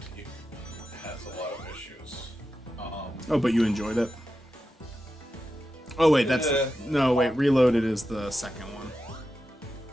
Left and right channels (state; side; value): normal; both; correlation 0.90